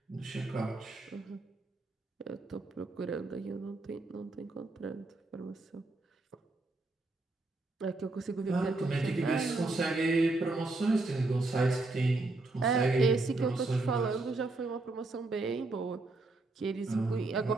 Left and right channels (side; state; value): left; quieter; 3.2 dB